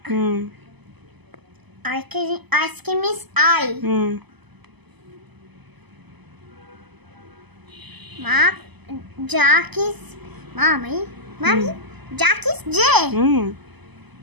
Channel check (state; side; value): late; left; 0.99 ms